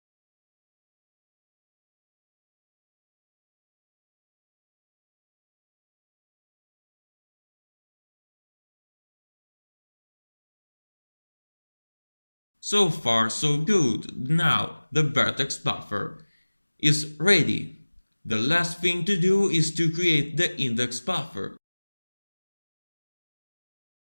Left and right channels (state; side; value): inverted; both; correlation -1.00